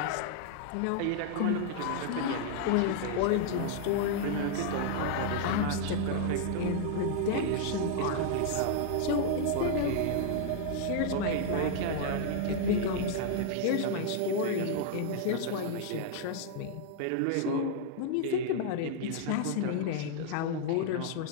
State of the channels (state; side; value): different; both; correlation 0.00